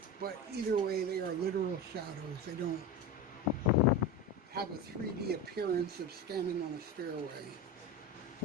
But either way, they are literal shadows. They don't have a 3D appearance of standing on a stairway.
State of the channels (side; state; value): both; normal; correlation 0.23